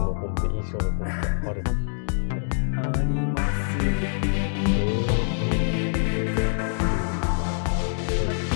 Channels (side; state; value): right; silent; digital silence